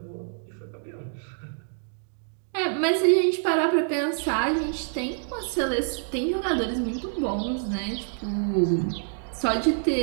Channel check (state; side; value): silent; left; digital silence